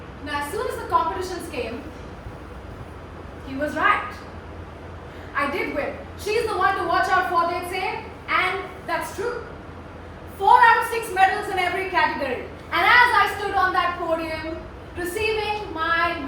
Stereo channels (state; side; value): identical; both; correlation 1.00